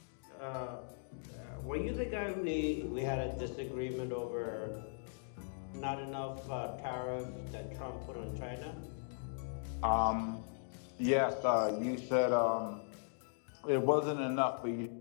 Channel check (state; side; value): silent; right; digital silence